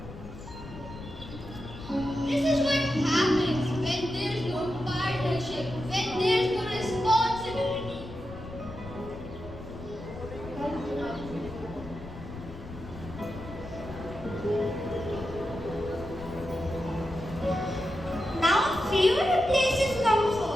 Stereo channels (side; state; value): left; noise; rumble, 13 dB below the sound